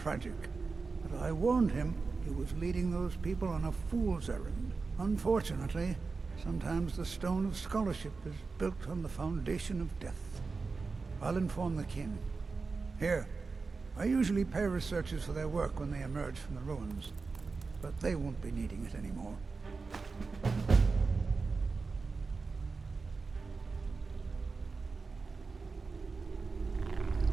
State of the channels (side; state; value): left; quieter; 4.3 dB